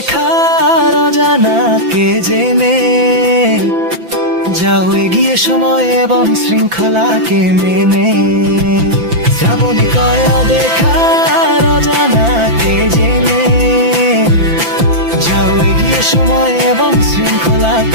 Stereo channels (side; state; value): left; late; 5.9 ms